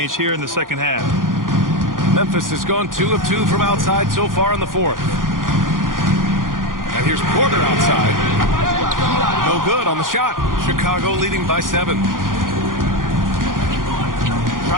here in the second half. Memphis has gone 2 of 2 from outside so far in the fourth. And here's Porter outside. No good on the shot. Chicago leading by 7.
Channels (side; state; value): left; late; 0.90 ms